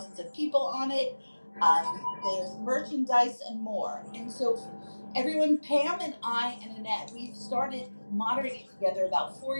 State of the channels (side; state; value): both; inverted; correlation -1.00